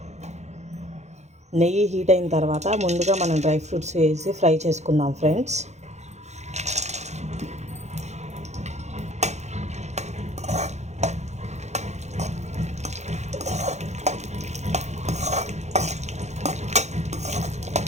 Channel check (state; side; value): late; left; 0.33 ms